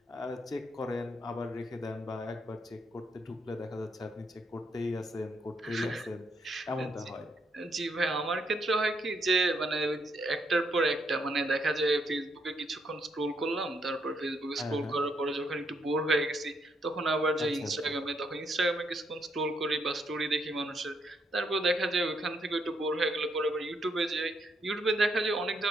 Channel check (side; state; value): both; normal; correlation 0.75